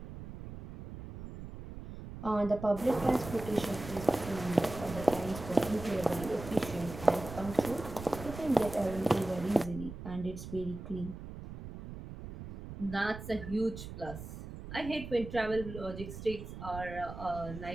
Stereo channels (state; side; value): noise; right; rumble, 11 dB below the sound